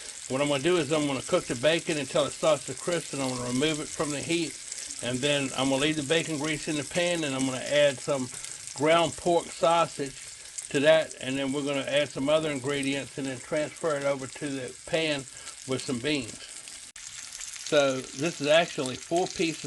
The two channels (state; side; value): identical; both; correlation 1.00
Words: What I'm going to do is I'm going to cook the bacon until it starts to crisp, and I'm going to remove it from the heat. And then I'm going to leave the bacon grease in the pan, and I'm going to add some ground pork sausage to that, and then we're going to add some other ingredients and then transfer it over to the pan with some beans. So this is actually 4